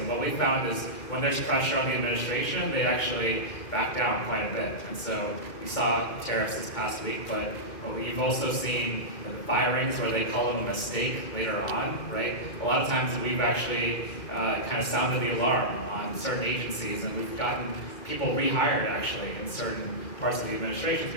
what we found is when there's pressure on the administration, they actually back down quite a bit. And so we saw tariffs this past week, but we've also seen firings where they call them a mistake later on, right? A lot of times we've actually kind of sounded the alarm on certain agencies, and we've gotten people rehired actually in certain parts of the administration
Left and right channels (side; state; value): right; late; 2.2 ms